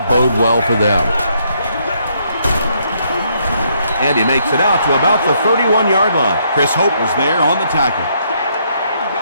bode well for them. And he makes it out to about the 31-yard line. Chris Hope was there on the tackle.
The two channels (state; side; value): inverted; both; correlation -0.72